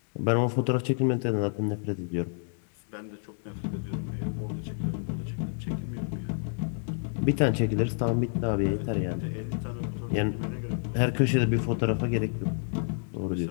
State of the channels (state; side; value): silent; right; digital silence